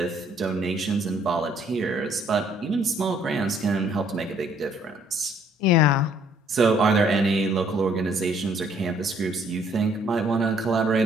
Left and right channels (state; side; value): normal; both; correlation 0.63